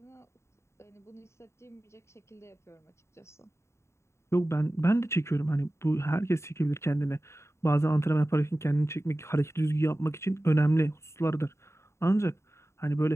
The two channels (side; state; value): right; late; 0.13 ms